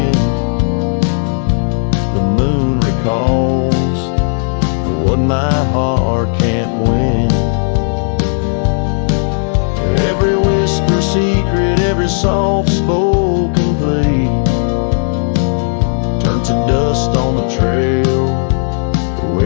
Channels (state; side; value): silent; right; digital silence